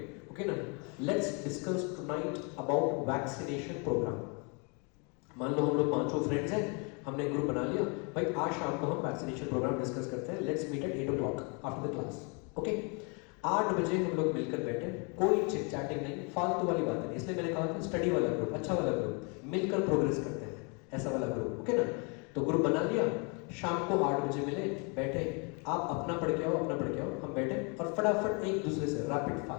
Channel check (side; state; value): right; quieter; 34.0 dB